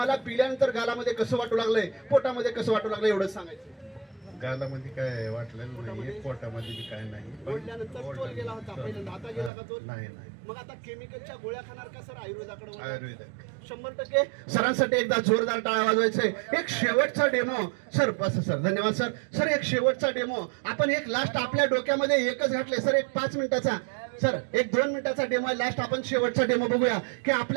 पिल्यानंतर गालामध्ये कसं वाटू लागलंय, पोटामध्ये कसं वाटू लागलंय एवढंच सांगायचं. गालामध्ये काय वाटलेलं नाही, पोटामध्ये बी काय नाही. ओढल्यानंतर तोल गेला होता पहिल्यांदा, आता गेला का तोल? नाही नाही, मग आता केमिकलच्या गोळ्या खाणार का सर आयुर्वेदाकडे वळणार? आयुर्वेदिक. 100% सरांसाठी एकदा जोरदार टाळ्या वाजवायचे. एक शेवटचा डेमो सर, बस सर, धन्यवाद सर. सर एक शेवटचा डेमो आपण एक लास्ट आपल्या डोक्यामध्ये एकच घातले सर, एक 5 मिनिटाचा सर, एक 2 मिनिटाचा डेमो आहे लास्ट. आपण शेवटचा डेमो बघूया की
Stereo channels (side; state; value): left; drops out; at 9.5 s